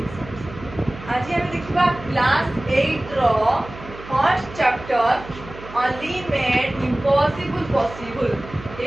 आज हम देखिबा class 8 रो first chapter only made impossible possible.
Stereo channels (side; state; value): right; noise; hum, 15 dB below the sound